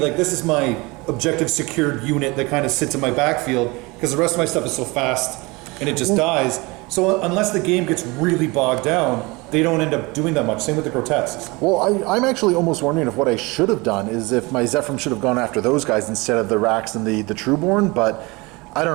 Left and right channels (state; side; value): quieter; left; 25.0 dB